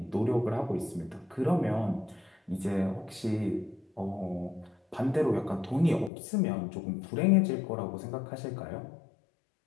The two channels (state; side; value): drops out; right; at 6.1 s